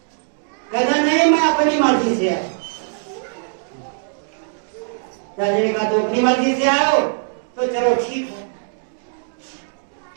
कहता नहीं मैं अपनी मर्जी से आया। राजा ने कहा तो अपनी मर्जी से आए हो तो चलो ठीक है।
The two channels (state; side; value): silent; left; digital silence